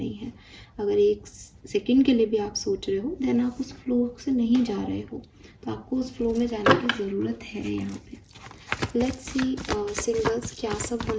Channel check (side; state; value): both; identical; correlation 1.00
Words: है। अगर एक सेकंड के लिए भी आप सोच रहे हो, देन आप उस फ्लो से नहीं जा रहे हो, तो आपको उस फ्लो में जाने की ज़रूरत है यहाँ पे। लेट्स सी सिंगल्स क्या सब